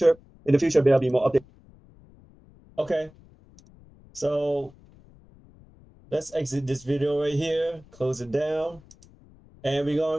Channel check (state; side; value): noise; left; rumble, 26 dB below the sound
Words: In the future, there'll be more updates. Okay, so let's exit this video right here, close it down, and we're